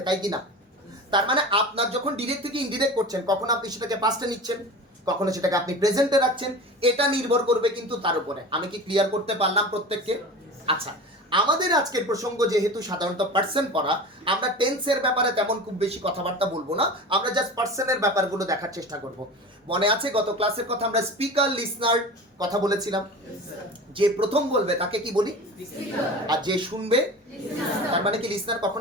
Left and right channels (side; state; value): both; normal; correlation 0.33